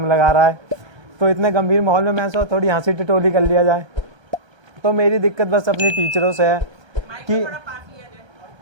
लगा रहा है। तो इतने गंभीर माहौल में मैं सोचा थोड़ी हंसी टिटोली कर लिया जाए। तो मेरी दिक्कत बस अपनी टीचरों से है कि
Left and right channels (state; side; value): late; left; 1.3 ms